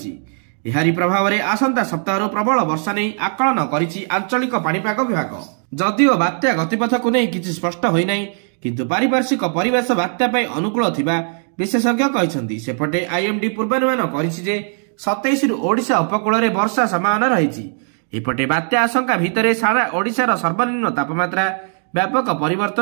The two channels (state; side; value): silent; left; 55 dB below the other